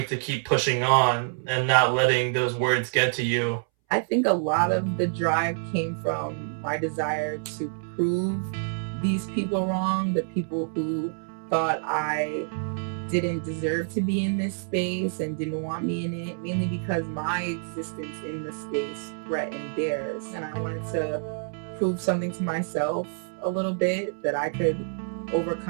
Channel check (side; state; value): left; silent; 60 dB below the other